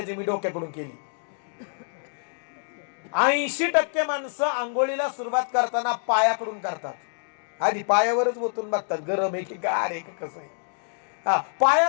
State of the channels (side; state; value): right; silent; digital silence